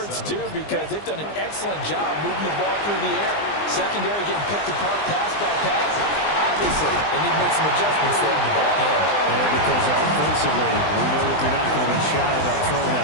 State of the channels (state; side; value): late; right; 20 ms